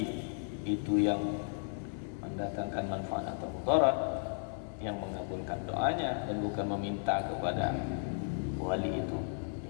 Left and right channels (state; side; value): silent; right; 55 dB below the other